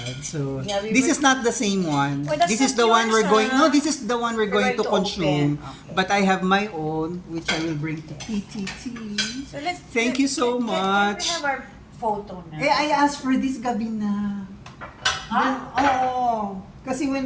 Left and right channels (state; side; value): identical; both; correlation 1.00